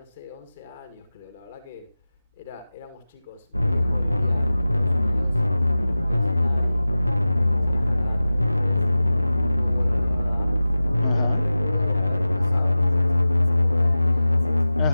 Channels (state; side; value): inverted; both; correlation -0.96